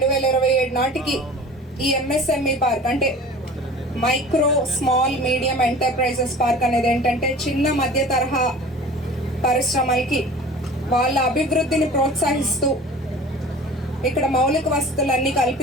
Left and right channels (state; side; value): normal; both; correlation 0.41